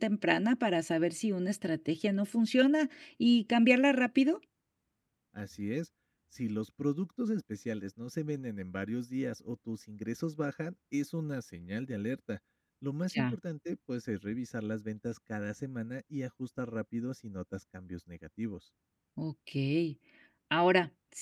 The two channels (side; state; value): both; identical; correlation 1.00